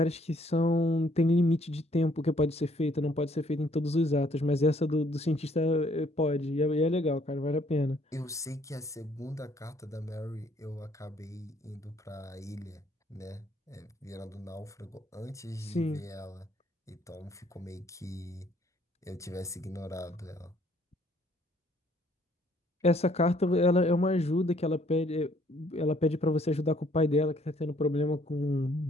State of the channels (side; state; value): both; normal; correlation 0.64